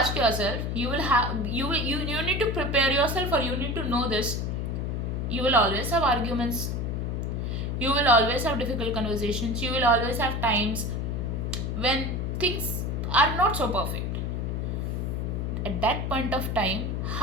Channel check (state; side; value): noise; left; hum, 1 dB below the sound